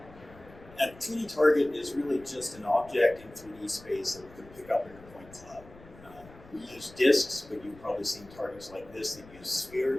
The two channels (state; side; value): noise; left; rumble, 21 dB below the sound